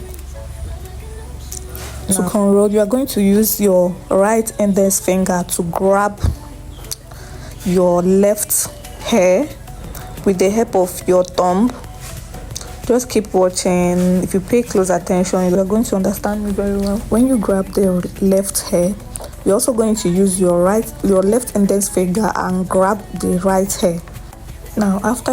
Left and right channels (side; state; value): both; identical; correlation 1.00